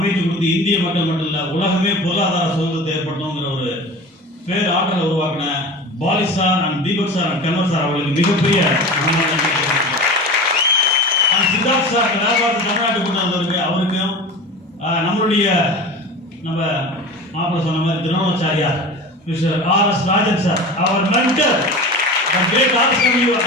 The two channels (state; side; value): normal; both; correlation 0.34